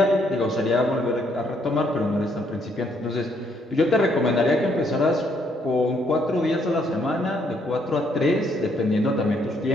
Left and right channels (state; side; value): normal; both; correlation 0.70